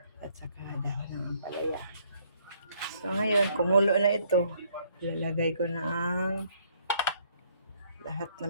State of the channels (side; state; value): both; inverted; correlation -0.66